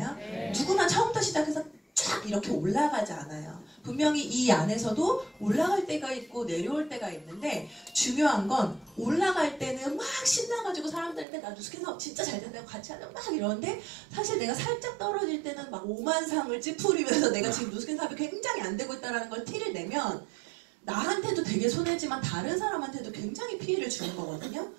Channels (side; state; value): left; drops out; at 11.2 s